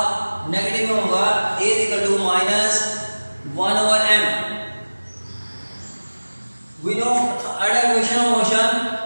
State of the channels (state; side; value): inverted; both; correlation -1.00